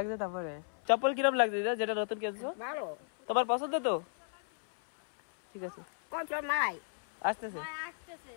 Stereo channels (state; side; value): silent; right; 55 dB below the other